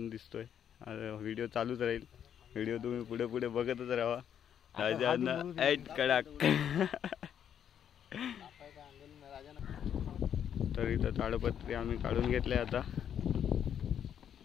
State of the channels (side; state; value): right; quieter; 9.0 dB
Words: दिसतोय। व्हिडिओ चालूच राहील, व्हिडिओ तुम्ही पुढे पुढे बघतच राहा। राजांना ऐट कडाक तर इथं ताडपत्री आम्ही काढून घेतले आता